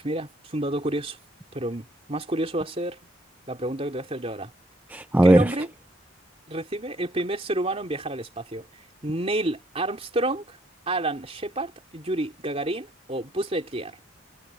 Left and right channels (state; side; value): normal; both; correlation 0.69